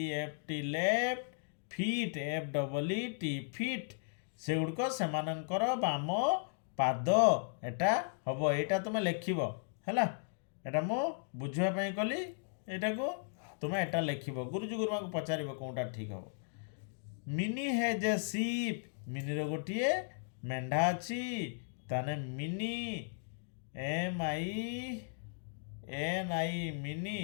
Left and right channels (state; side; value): silent; right; digital silence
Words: left feet FEET feet से गुड़क सेमानंकर बाम पाद एटा हम एटा तुम लिखब है एटा मु बुझापी कली एटा को तुम एटा लिखब गुरुजी गुरुमा को पचार कौटा ठीक हम मिनी हैज ए सीप मिनी रो गोटे मेंढा अच्छी ताने मिनी MINI मिनी